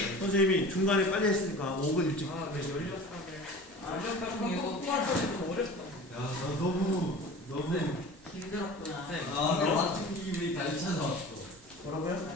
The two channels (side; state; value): both; normal; correlation 0.39